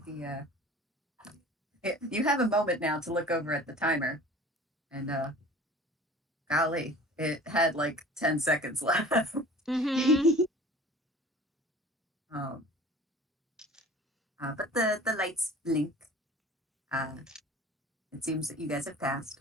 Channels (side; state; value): both; normal; correlation 0.44